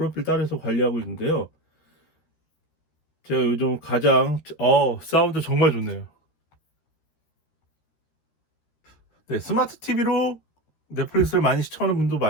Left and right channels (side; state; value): right; late; 13 ms